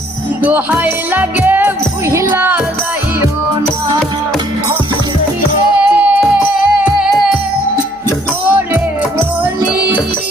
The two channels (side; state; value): left; noise; hum, 30 dB below the sound